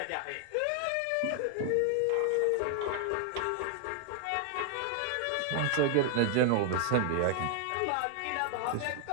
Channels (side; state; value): both; different; correlation 0.00